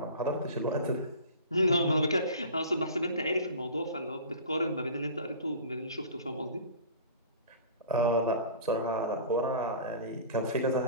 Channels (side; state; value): both; inverted; correlation -0.39